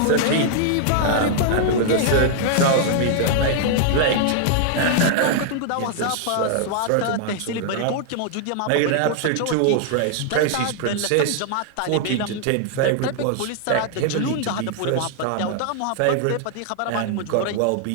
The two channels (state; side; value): different; both; correlation -0.01